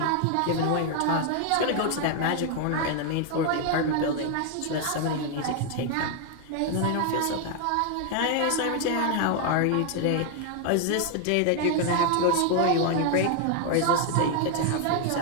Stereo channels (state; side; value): different; both; correlation 0.00